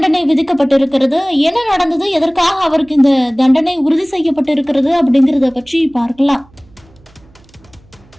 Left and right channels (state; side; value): noise; right; hum, 29 dB below the sound